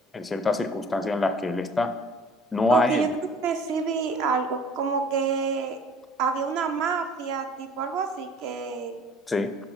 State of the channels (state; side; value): normal; both; correlation 0.51